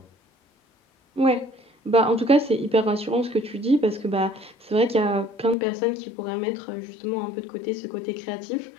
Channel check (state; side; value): drops out; right; at 5.6 s